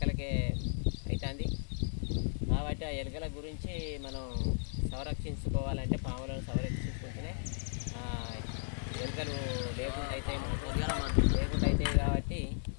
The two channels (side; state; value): right; silent; digital silence